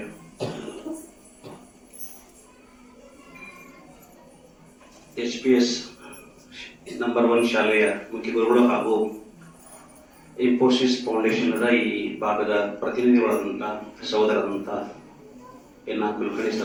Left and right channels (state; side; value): identical; both; correlation 1.00